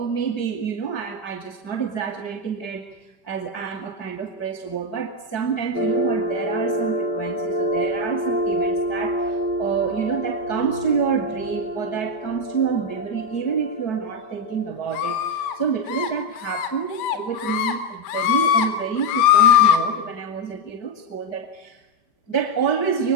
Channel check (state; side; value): late; right; 5.1 ms